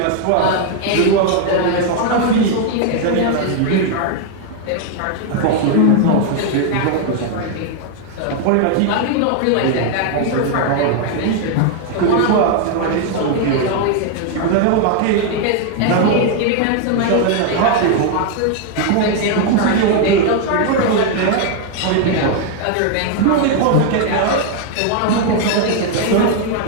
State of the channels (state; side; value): different; both; correlation 0.00